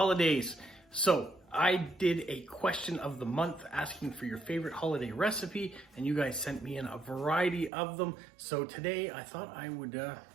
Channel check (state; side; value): drops out; left; at 7.7 s